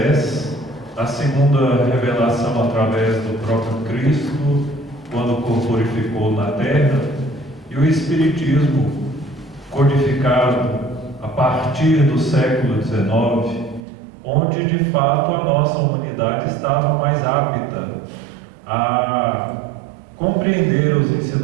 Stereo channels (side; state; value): left; drops out; at 13.9 s